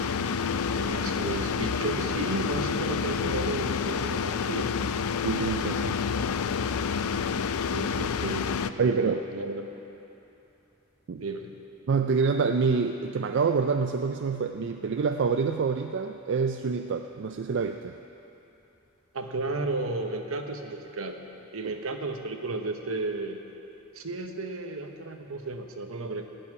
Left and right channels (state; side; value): normal; both; correlation 0.05